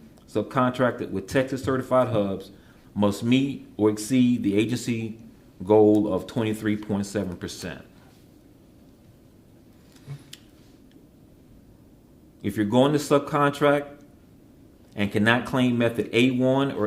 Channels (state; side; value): identical; both; correlation 1.00